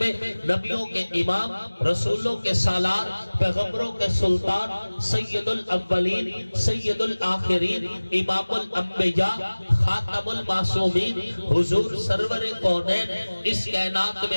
نبیوں کے امام، رسولوں کے سالار، پیغمبروں کے سلطان، سید الاولین، سید الآخرین، امام الانبیاء، خاتم المعصومین، حضور سرور کونین اس کائنات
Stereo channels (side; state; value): both; inverted; correlation -1.00